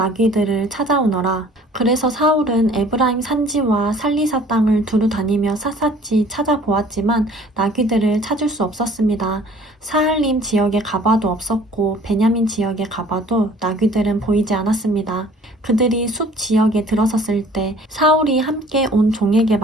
찾아오너라. 그래서 사울은 에브라임 산지와 살리사 땅을 두루 다니며 샅샅이 찾아보았지만 나귀들을 찾을 수 없었습니다. 사할림 지역에 가봐도 없었고 베냐민 지역에 가봐도 나귀들은 보이지 않았습니다. 그들이 숲 지역에 들어섰을 때 사울이 함께 온 종에게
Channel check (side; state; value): both; normal; correlation 0.52